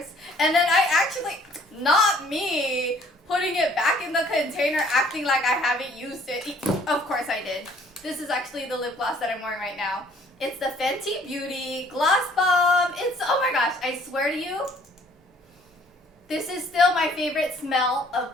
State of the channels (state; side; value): normal; both; correlation 0.58